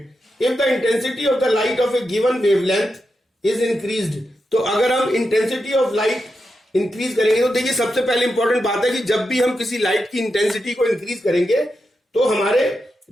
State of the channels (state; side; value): normal; both; correlation 0.87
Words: If the intensity of the light of a given wavelength is increased, तो अगर हम intensity of light increase करेंगे, तो देखिए सबसे पहले important बात है कि जब भी हम किसी लाइट की इंटेंसिटी को इंक्रीज करेंगे तो हमारे